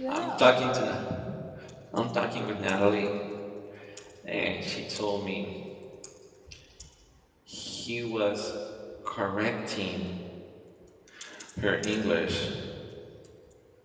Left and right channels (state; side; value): identical; both; correlation 1.00